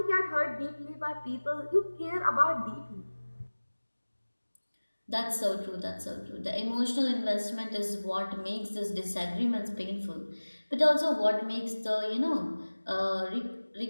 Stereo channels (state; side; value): inverted; both; correlation -1.00